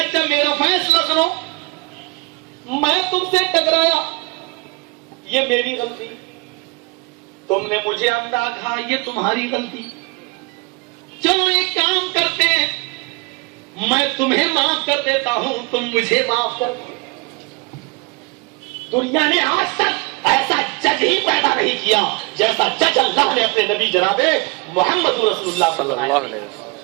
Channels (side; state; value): left; quieter; 27.0 dB